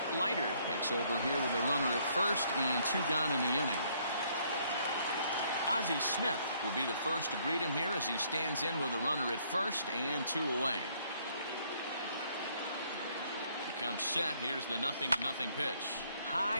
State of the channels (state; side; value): inverted; both; correlation -0.66